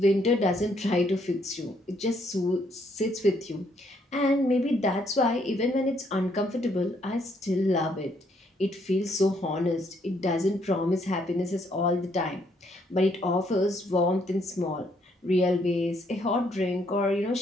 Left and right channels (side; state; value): both; normal; correlation 0.71